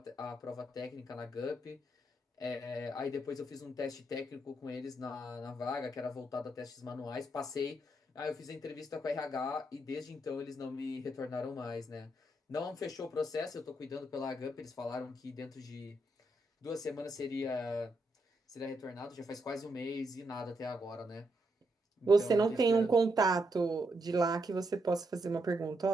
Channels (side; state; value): both; normal; correlation 0.79